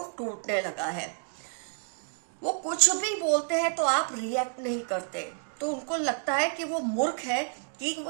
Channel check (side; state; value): left; silent; digital silence